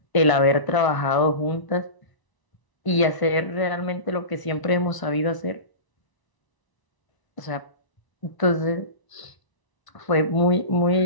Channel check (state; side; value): late; right; 1.0 ms